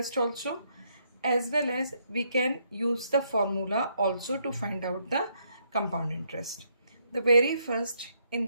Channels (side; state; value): both; inverted; correlation -0.73